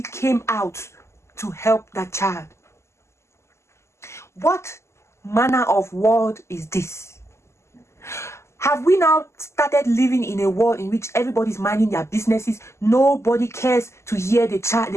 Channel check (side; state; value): right; late; 0.13 ms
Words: came out to help that child. What manner of world is this? Have we now started living in a world in which everybody's minding their businesses? Nobody cares to hear the child,